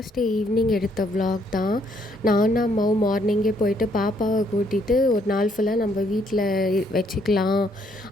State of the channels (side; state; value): both; normal; correlation 0.69